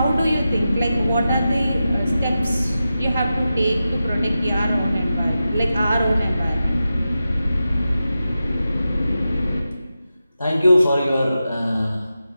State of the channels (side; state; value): both; inverted; correlation -0.91